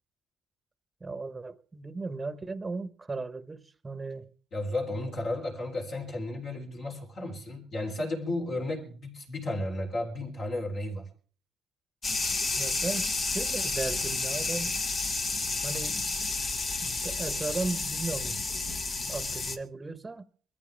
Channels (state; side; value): normal; both; correlation 0.86